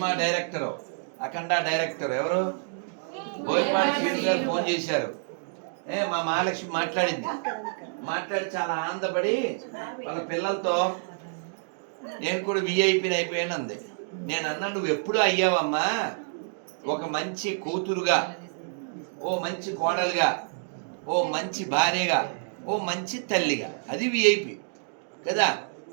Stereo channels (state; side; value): silent; left; digital silence